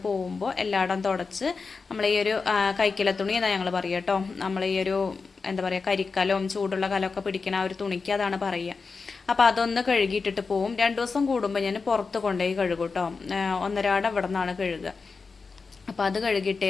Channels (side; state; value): right; quieter; 4.6 dB